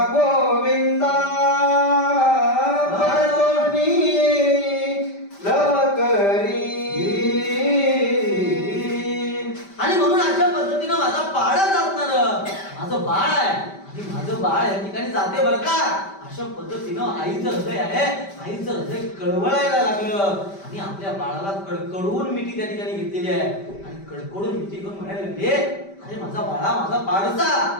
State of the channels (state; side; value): late; right; 5.1 ms